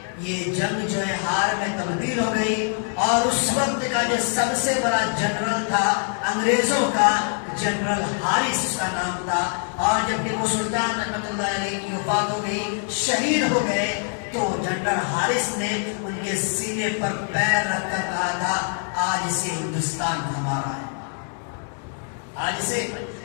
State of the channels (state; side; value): silent; right; 56 dB below the other